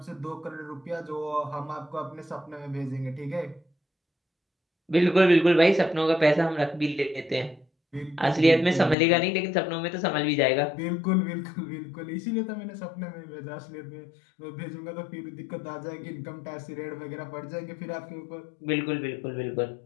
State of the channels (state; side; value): drops out; right; at 9.0 s